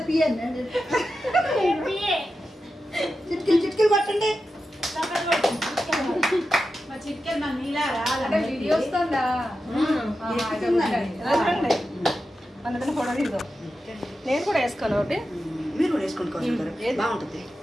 పిఎన్. చిట్కీలు కొట్టండి. నేను కూడా వేసుకోను ఒకటి. మీరు కూడా వేసుకోండి, బాగుంటుంది.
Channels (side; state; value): both; normal; correlation 0.91